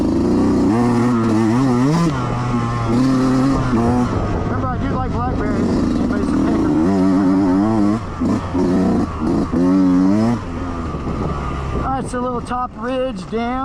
Remember, I do like blackberries. Anybody's a picker. Alright, it's a little top ridge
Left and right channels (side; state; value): both; identical; correlation 1.00